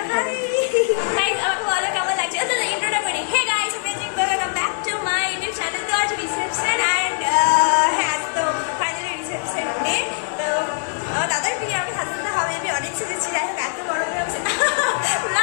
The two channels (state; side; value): silent; right; digital silence